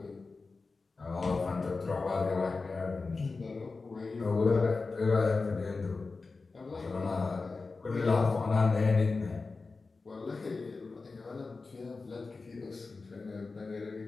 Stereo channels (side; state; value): right; quieter; 4.0 dB